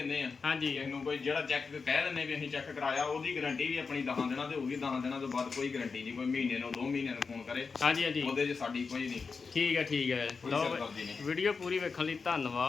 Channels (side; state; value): right; quieter; 4.9 dB